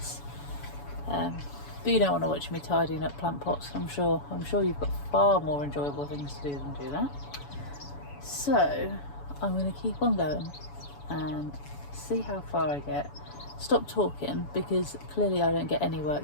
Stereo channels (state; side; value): late; right; 7.0 ms